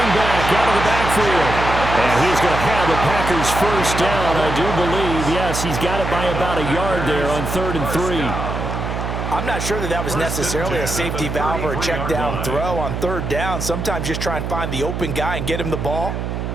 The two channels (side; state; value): right; noise; hum, 4 dB below the sound